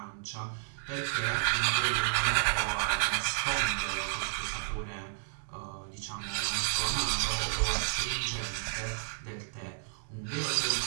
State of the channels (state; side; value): silent; left; digital silence